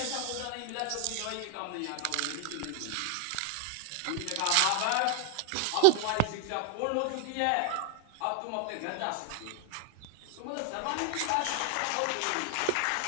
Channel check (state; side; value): different; both; correlation 0.00